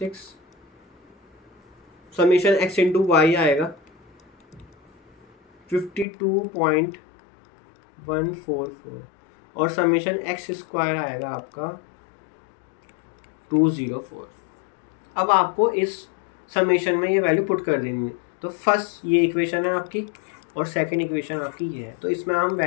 समेशन एक्स इंटू वाई आएगा 52.144, और समेशन एक्स स्क्वायर आएगा आपका 204। अब आपको इस समेशन में ये वैल्यू पुट कर देनी है। तो फर्स्ट ये इक्वेशन है आपकी, और सेकंड इक्वेशन आपकी ये है, तो इसमें हम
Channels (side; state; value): right; drops out; at 6.1 s